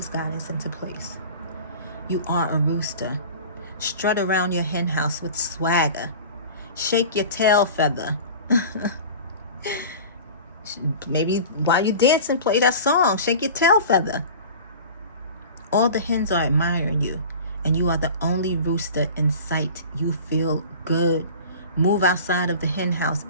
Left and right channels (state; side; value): inverted; both; correlation -0.38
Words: guidance into place. You are a rooster. Strut around your hen house with swagger. Shake your tail feather. Maybe while you're dancing, play that song. Shake your tail feather. All the hens are admiring you, and you are the only rooster in sight. You feel good. Move outside of the hen house.